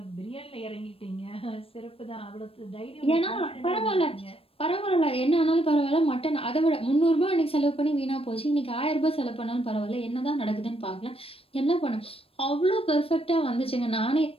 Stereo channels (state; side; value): late; right; 0.28 ms